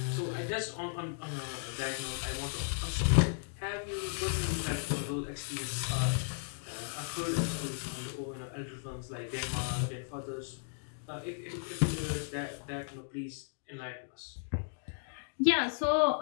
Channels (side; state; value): right; silent; digital silence